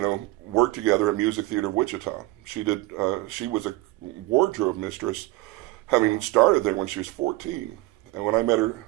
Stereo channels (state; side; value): quieter; left; 19.4 dB